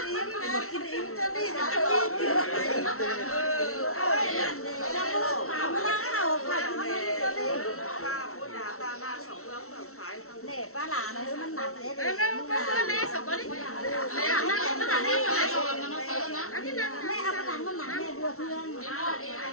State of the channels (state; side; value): late; right; 0.63 ms